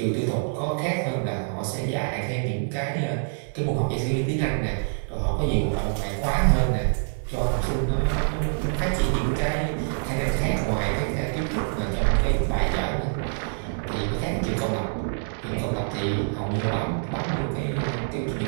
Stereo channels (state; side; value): silent; left; digital silence